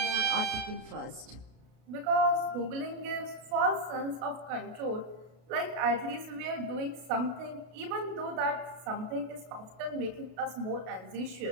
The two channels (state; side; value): late; left; 32 ms